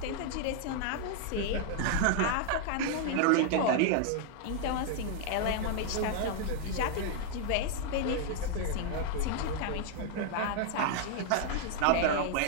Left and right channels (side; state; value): both; different; correlation 0.00